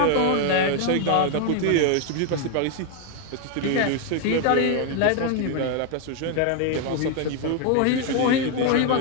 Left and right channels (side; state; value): both; different; correlation 0.01